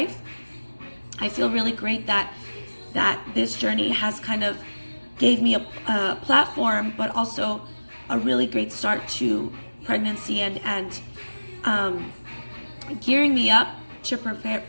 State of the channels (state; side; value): inverted; both; correlation -1.00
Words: I feel really great that this journey has kind of gave me a platform, but also a really great start to pregnancy and gearing me up to